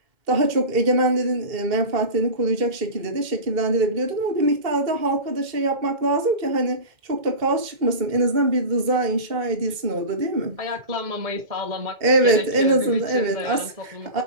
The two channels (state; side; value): late; left; 2.1 ms